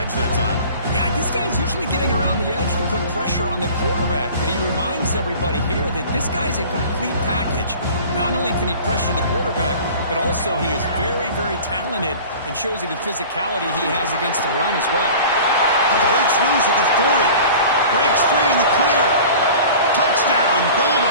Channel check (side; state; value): both; inverted; correlation -0.41